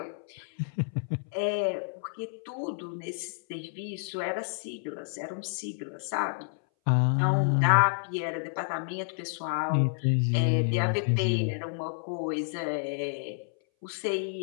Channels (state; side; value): silent; right; 58 dB below the other